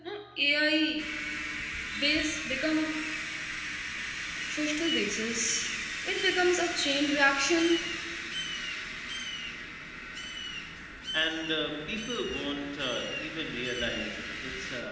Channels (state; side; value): identical; both; correlation 1.00